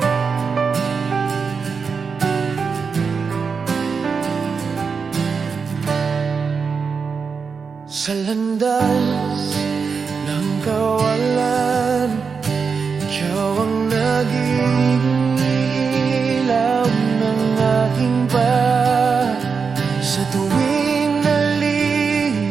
Sa landas ng kawalan, ikaw ang naging ilaw ng aking pag. Sa tuwing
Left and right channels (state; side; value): quieter; left; 5.5 dB